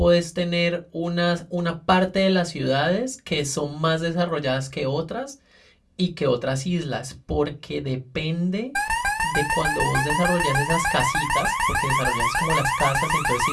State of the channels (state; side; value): identical; both; correlation 1.00